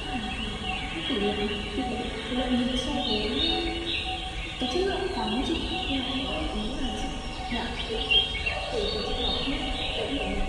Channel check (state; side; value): identical; both; correlation 1.00